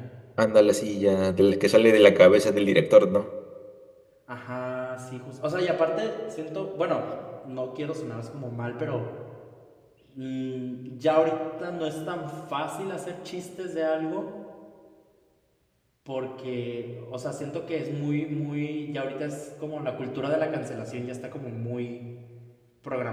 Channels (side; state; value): both; identical; correlation 1.00